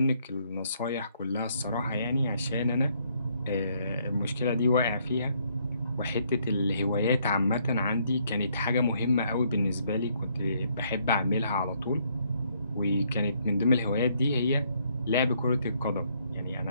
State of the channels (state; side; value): inverted; both; correlation -0.70